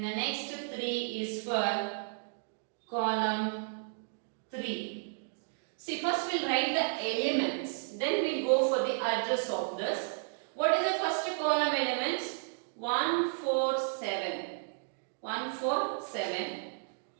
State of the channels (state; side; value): silent; left; digital silence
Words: the next 3 is for column 3. 3. See, first we'll write the elements, then we'll go for the address of this. What is the first column elements? 1, 4, 7. 1, 4, 7.